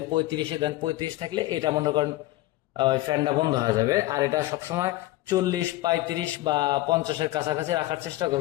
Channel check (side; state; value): right; quieter; 17.0 dB